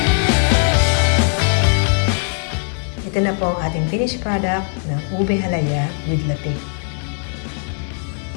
Ito na po ang ating finished product ng ube halaya with latik.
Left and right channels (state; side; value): silent; right; 66 dB below the other